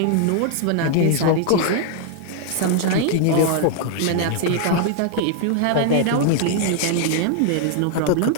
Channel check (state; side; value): different; both; correlation 0.00